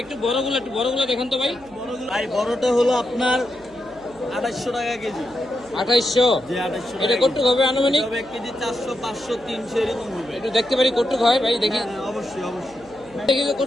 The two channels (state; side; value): noise; right; hum, 24 dB below the sound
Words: একটু বড়গুলো দেখুন তো ভাই। ভাই বড়টা হলো আপনার 2800 টাকা কেজি। 2800। যে 2800 এটা টাকা কটুক হবে আনুমানিক? কেজি। 1 কেজি 400, 500, 300 এরকম হবে। একটু দেখতে পারি কটুক হয় ভাই? দেখি হ্যাঁ, অবশ্যই অবশ্যই। দেখি তো